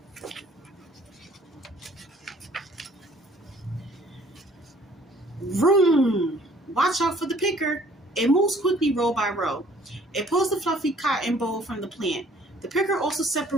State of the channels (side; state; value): both; normal; correlation 0.57